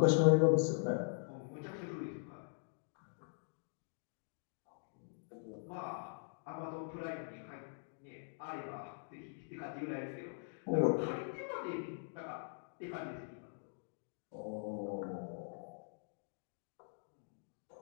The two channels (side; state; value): right; silent; digital silence